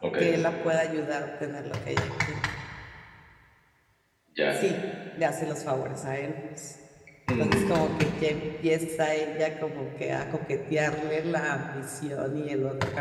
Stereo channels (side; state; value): both; identical; correlation 1.00